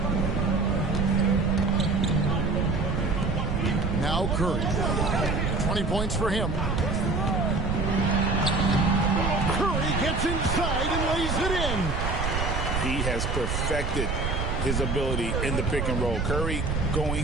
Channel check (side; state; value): right; noise; rumble, 2 dB below the sound